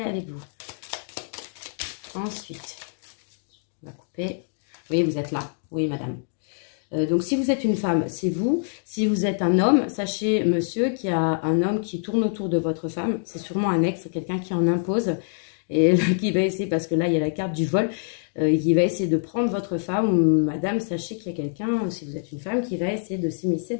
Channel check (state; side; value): silent; right; digital silence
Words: avec vous. Ensuite, on va couper. Oui, vous êtes là. Oui, madame. Donc, si vous êtes une femme, c'est vous. Si vous êtes un homme, sachez, monsieur, qu'il y a un homme qui tourne autour de votre femme. C'est sûrement un ex, quelqu'un qui en impose. et qui va essayer, parce que là, il y a la carte du vol, qui va essayer de prendre votre femme, ou madame, sachez qu'il y a quelqu'un, si vous êtes une femme, qui va essayer de s'immiscer